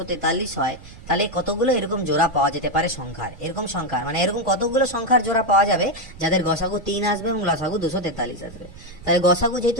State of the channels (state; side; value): noise; right; rumble, 18 dB below the sound